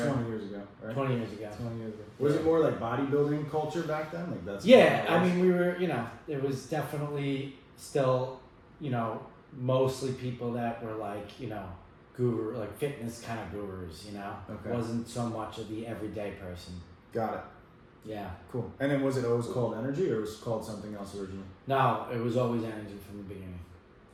20 years ago, right? 20 years ago. Was it more like bodybuilding culture back then? Like that's we were, it was definitely still, mostly people that were like, guru, like fitness kind of gurus, Okay. Wasn't so much of the everyday person. Got it. Yeah. Cool. And then was it always called Energy, or was it called something else originally? No, it was always Energy from the beginning.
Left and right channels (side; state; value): both; identical; correlation 1.00